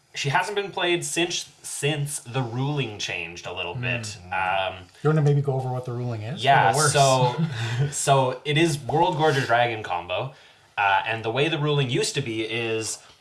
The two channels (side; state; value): both; identical; correlation 1.00